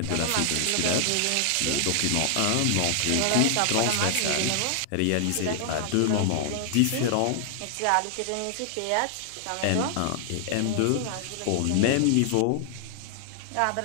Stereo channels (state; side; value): different; both; correlation 0.00